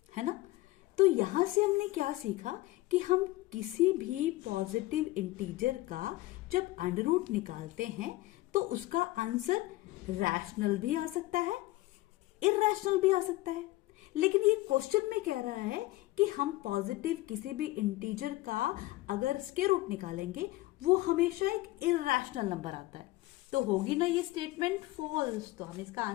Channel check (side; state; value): right; quieter; 18.7 dB